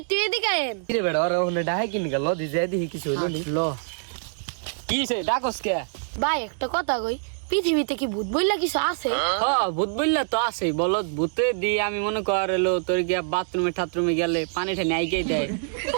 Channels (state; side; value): silent; left; digital silence